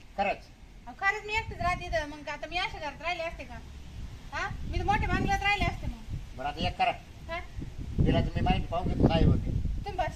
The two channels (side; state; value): both; identical; correlation 1.00